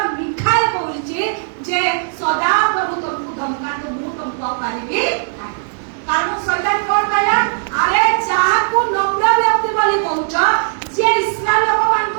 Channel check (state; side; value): silent; left; digital silence